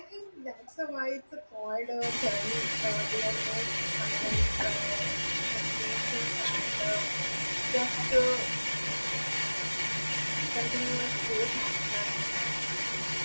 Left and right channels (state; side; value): inverted; both; correlation -1.00